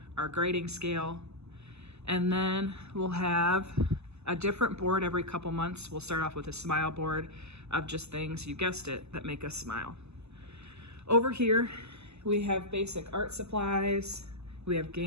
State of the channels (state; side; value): late; left; 0.80 ms